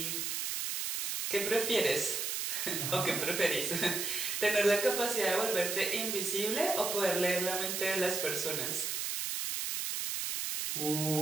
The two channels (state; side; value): noise; right; hiss, 1 dB below the sound